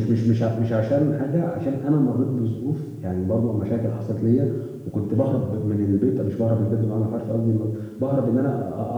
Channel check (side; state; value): both; identical; correlation 1.00